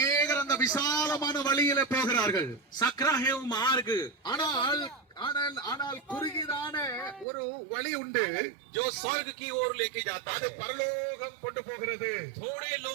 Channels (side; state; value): left; drops out; at 7.2 s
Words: அந்த விசாலமான வழியில போகிறார்கள். सकरा है वो मार्ग, ஆனால் குறுகிதான ஒரு வழி உண்டு, जो स्वर्ग की ओर लेके जाता அது है। பரலோகம் கொண்டு போகிறது. थोड़े